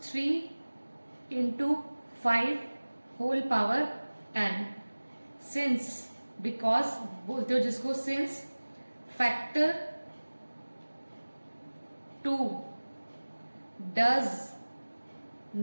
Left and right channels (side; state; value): both; inverted; correlation -1.00